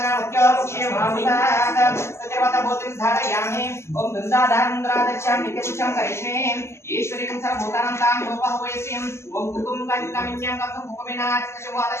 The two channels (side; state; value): right; late; 0.13 ms